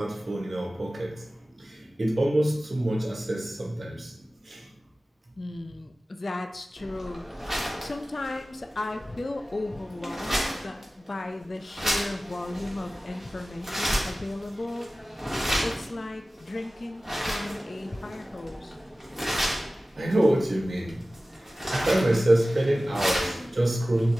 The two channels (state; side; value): normal; both; correlation 0.97